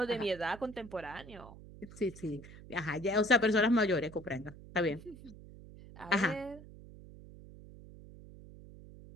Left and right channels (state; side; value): noise; right; hum, 17 dB below the sound